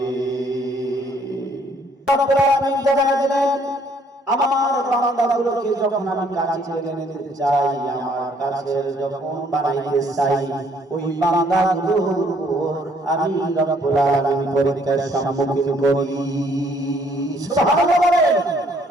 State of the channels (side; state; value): both; normal; correlation 0.64